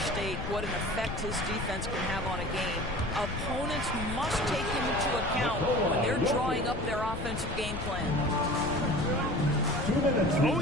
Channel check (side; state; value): left; noise; rumble, 6 dB below the sound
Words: what an effect his defense can have on a game. Opponents must take him into account when they're drawing up their offensive game plan. Oh,